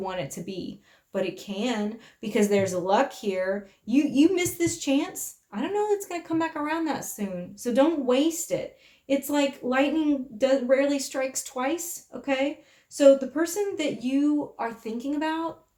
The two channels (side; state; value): both; identical; correlation 1.00